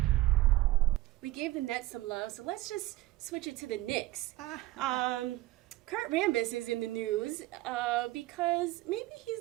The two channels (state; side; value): quieter; left; 17.5 dB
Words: We gave the Nets some love, so let's just switch it to the Knicks. Kurt Rambis is in the news because maybe